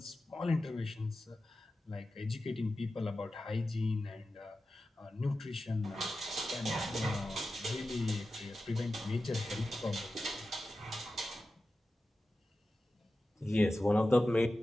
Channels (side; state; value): both; normal; correlation 0.93